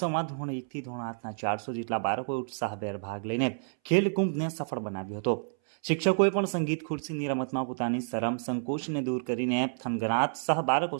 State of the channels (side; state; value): left; silent; 58 dB below the other